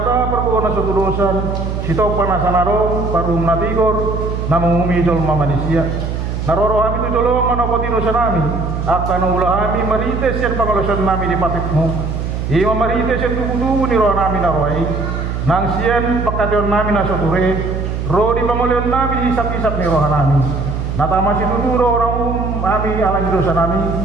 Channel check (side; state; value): right; noise; hum, 3 dB below the sound